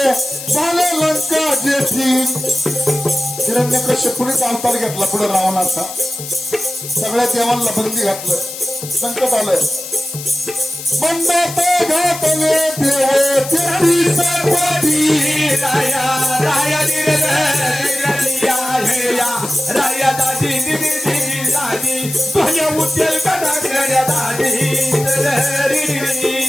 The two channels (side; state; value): left; noise; hiss, 10 dB below the sound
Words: झाले लंका जेठी. हिरण्यकश्यपूनेच अवतार घेतला पुढे रावणाचा. सगळ्या देवांना बंदी घातलं. संकट आलंय. बंदात घातले देव तेरी सर्वाधी. राया राया राया दादी दिदी दादी तुझ्या उद्यल